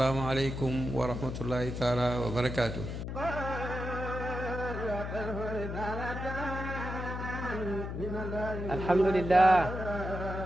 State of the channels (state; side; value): noise; left; hum, 5 dB below the sound